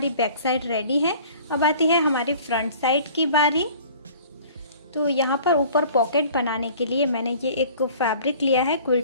बैक साइड रेडी है। अब आती है हमारी फ्रंट साइड की बारी। तो यहाँ पर ऊपर पॉकेट बनाने के लिए मैंने ये एक फैब्रिक लिया है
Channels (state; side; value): inverted; both; correlation -0.49